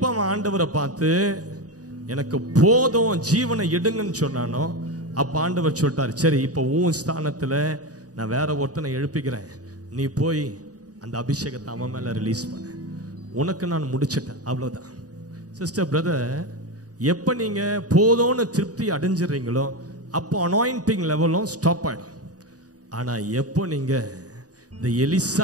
அவன் ஆண்டவரை பார்த்து எனக்கு போதும் ஜீவனை எடுங்கன்னு சொன்னானோ அப்ப ஆண்டவர் சொல்லிட்டாரு, சரி இப்போ உன் ஸ்தானத்துல நான் வேற ஒருத்தனை எழுப்பிக்கிறேன், நீ போய் அந்த அபிஷேகத்தை அவன் மேல ரிலீஸ் பண்ண, உனக்கு நான் முடிச்சிட்டேன், அவ்வளவுதான். சிஸ்டர் பிரதர், எப்ப நீங்க போதும்னு திருப்தி அடைஞ்சிடுறீங்களோ அப்போ அனாயிண்டிங் லெவலும் ஸ்டாப் ஆயிடும். ஆனா எப்போ நீங்க இந்த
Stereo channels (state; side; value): late; left; 0.67 ms